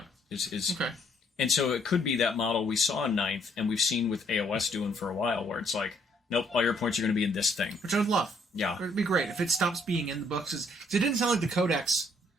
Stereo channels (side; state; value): both; normal; correlation 0.67